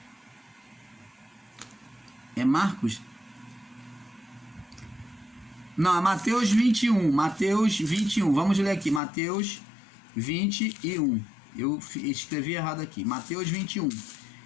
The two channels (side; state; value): right; drops out; at 9.0 s